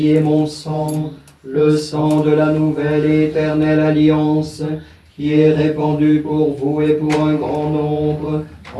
est mon sang, le sang de la nouvelle et éternelle alliance, qui est répandu pour vous et pour un grand nombre,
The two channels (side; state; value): both; identical; correlation 1.00